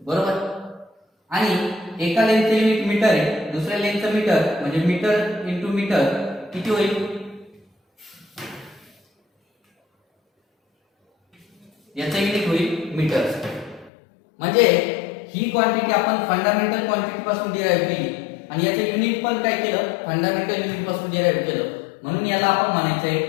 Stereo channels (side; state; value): right; drops out; at 13.9 s